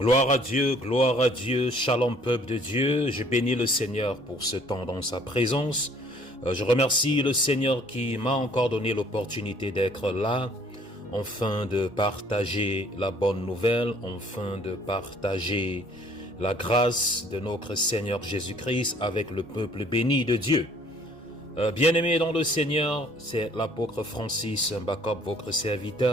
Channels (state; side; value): normal; both; correlation 0.58